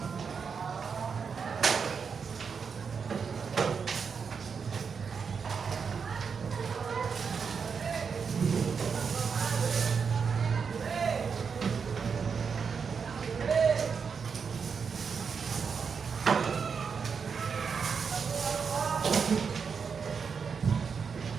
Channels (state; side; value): quieter; left; 6.0 dB